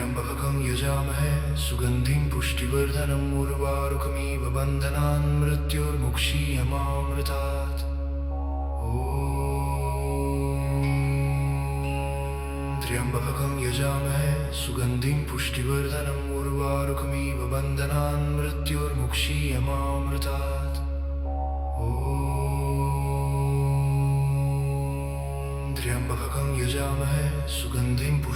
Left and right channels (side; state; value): both; identical; correlation 1.00